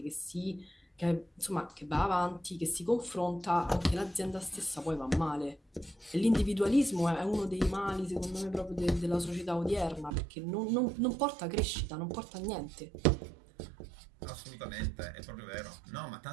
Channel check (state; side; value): drops out; left; at 10.1 s